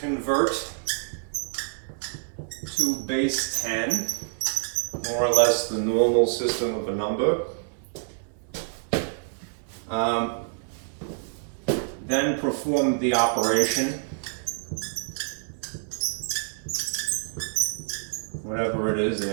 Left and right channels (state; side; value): silent; left; 60 dB below the other